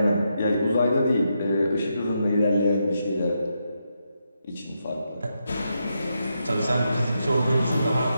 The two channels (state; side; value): inverted; both; correlation -0.83